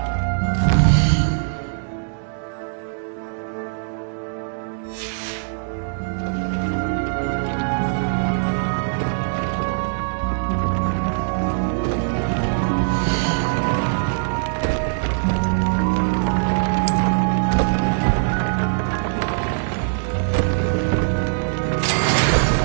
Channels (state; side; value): silent; left; digital silence